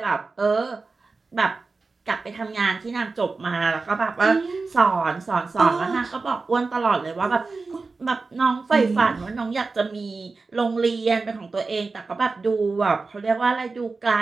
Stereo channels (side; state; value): left; quieter; 4.0 dB